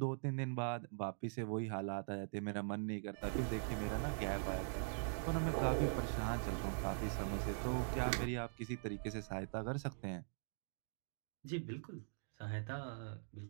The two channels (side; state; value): left; silent; digital silence